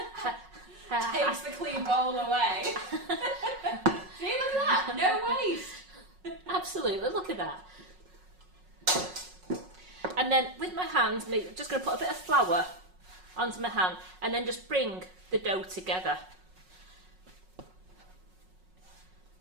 Takes the clean bowl away. See, look at that. No waste. Absolutely, look at that. And then with my hands, I'm just going to put a bit of flour onto my hand and then just bring the dough together.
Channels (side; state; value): left; late; 5.4 ms